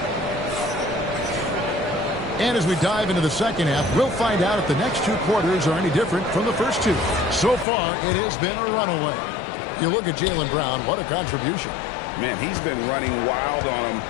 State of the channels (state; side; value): drops out; right; at 7.7 s